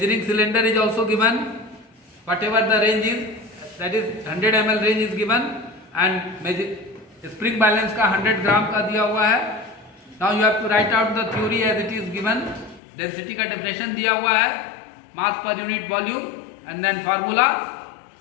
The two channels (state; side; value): drops out; right; at 12.8 s